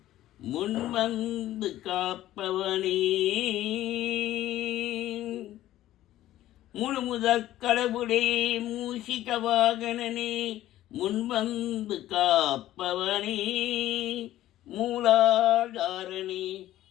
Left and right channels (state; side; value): quieter; right; 14.1 dB